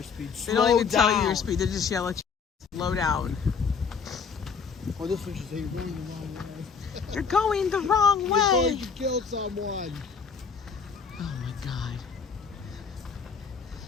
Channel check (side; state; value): right; quieter; 5.9 dB